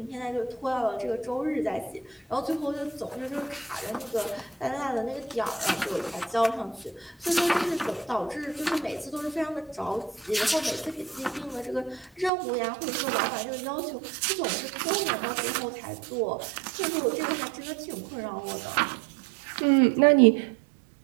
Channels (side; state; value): left; drops out; at 12.3 s